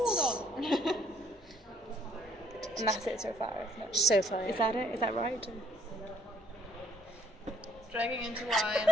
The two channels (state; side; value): normal; both; correlation 0.64